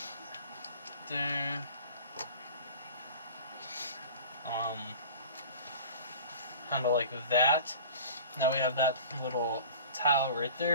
there. Kind of like that. Now we have that little tile right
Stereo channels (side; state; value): both; inverted; correlation -0.40